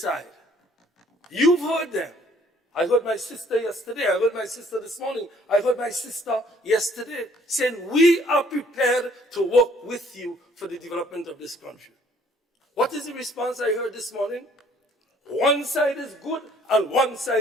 You've heard them. I heard my sister yesterday. I heard my sister this morning. I heard my sister yesterday saying, we are prepared to work with you for the development of this country. What is the response I heard this morning? One side is good and one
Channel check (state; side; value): normal; both; correlation 0.60